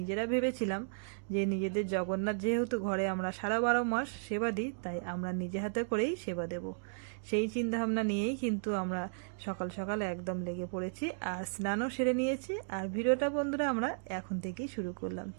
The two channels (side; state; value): left; silent; digital silence